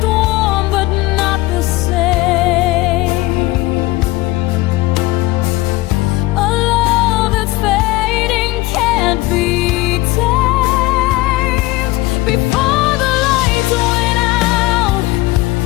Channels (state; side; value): quieter; right; 19.2 dB